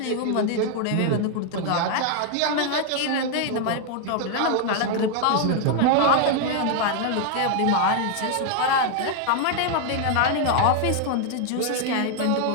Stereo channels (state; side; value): different; both; correlation 0.00